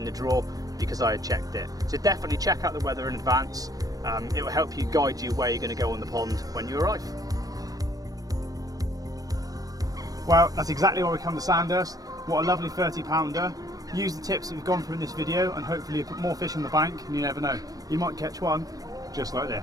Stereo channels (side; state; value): left; late; 0.18 ms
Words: the draw because I had checked it. So definitely check out the weather in advance. It will help you guide you where you're going to go on the pond when you arrive. Well, that's exactly why we come to Sandhurst. What a lovely 30-pounder. Use the tips that we've gone through in this video and hopefully you put more fish on the bank, and you never know, you might catch one just like